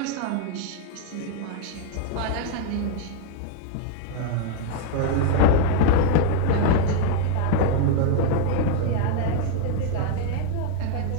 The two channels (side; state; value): both; different; correlation 0.00